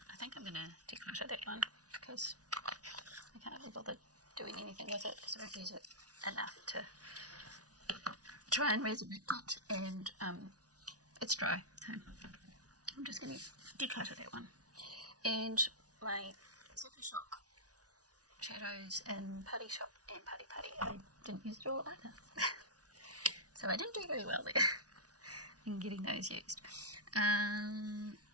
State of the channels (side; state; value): left; late; 0.68 ms